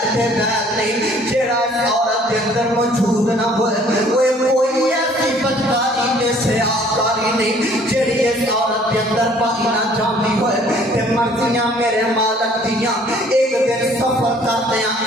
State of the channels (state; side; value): normal; both; correlation 0.57